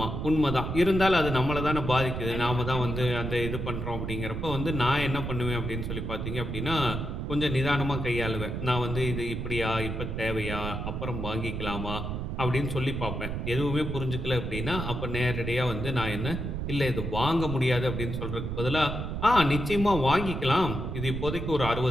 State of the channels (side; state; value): right; noise; rumble, 4 dB below the sound